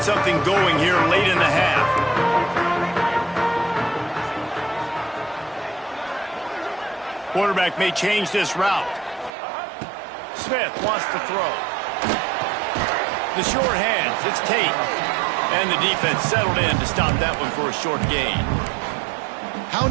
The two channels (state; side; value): drops out; left; at 9.3 s